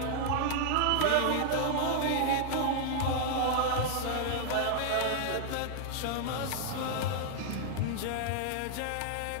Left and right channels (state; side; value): different; both; correlation -0.01